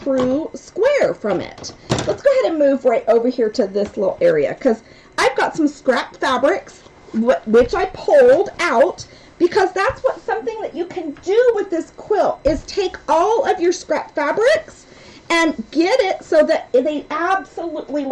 square from it. Let's go ahead and move right over here to this little area, because I've got some scrap fabrics, which I pulled out, because that's what something that you can do with this quilt is take all of your scrap fabrics and get it so that they absolutely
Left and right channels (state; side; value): identical; both; correlation 1.00